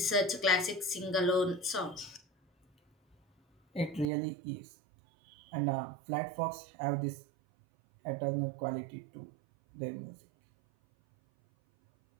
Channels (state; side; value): drops out; left; at 4.1 s